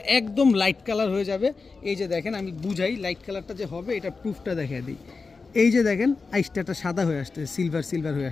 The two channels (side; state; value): right; quieter; 4.4 dB